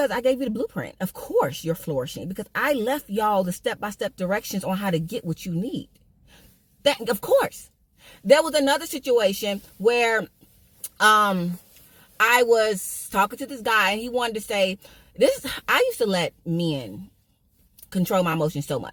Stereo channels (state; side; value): identical; both; correlation 1.00